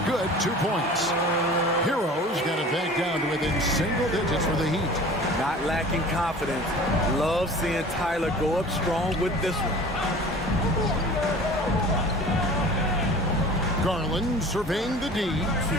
good, 2 points. Heroes got it back down to within single digits for the Heat. Not lacking confidence. Love seeing Tyler go up strong with this one. Garland surveying the D.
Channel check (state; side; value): normal; both; correlation 0.42